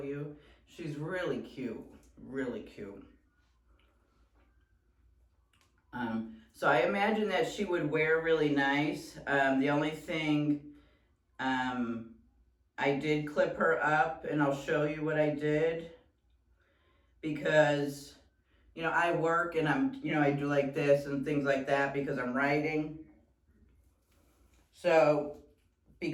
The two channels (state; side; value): identical; both; correlation 1.00